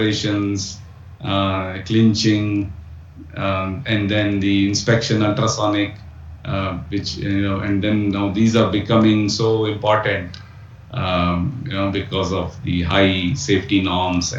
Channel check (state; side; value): identical; both; correlation 1.00